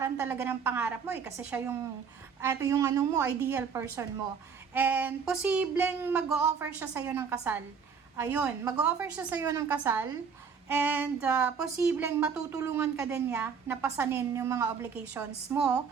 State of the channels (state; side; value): quieter; left; 6.3 dB